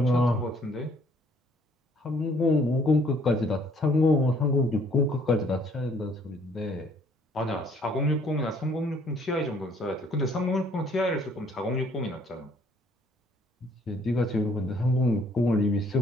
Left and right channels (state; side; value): normal; both; correlation 0.62